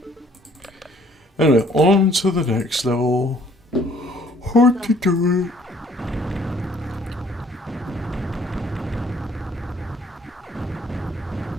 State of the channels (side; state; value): both; normal; correlation 0.60